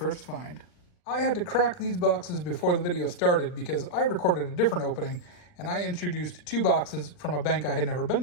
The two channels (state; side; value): late; right; 40 ms